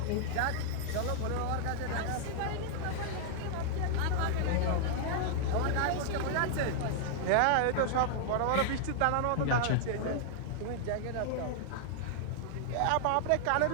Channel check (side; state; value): both; different; correlation -0.01